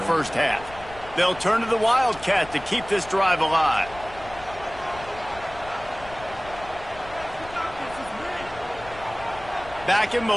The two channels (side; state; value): left; noise; rumble, 17 dB below the sound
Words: half. They'll turn to the Wildcat to keep this drive alive. Back in